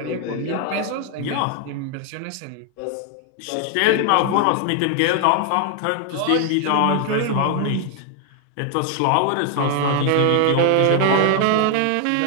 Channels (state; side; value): different; both; correlation 0.00